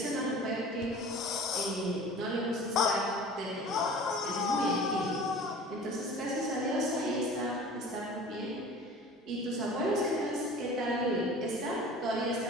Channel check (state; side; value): normal; both; correlation 0.42